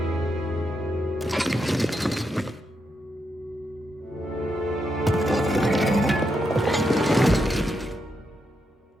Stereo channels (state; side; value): normal; both; correlation 0.82